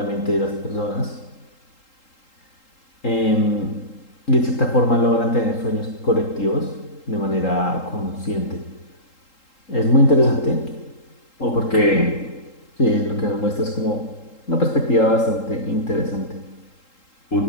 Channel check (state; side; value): late; right; 3.8 ms